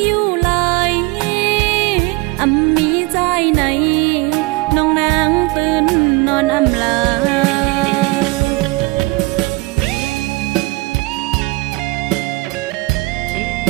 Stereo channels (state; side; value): quieter; left; 23.0 dB